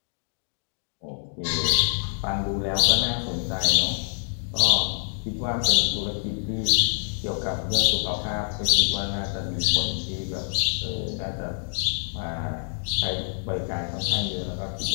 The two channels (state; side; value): silent; right; digital silence